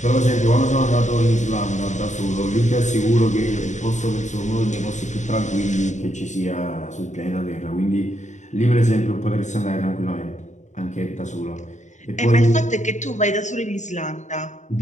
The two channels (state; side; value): late; right; 0.35 ms